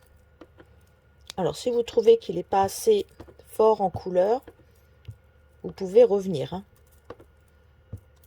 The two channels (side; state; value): both; identical; correlation 1.00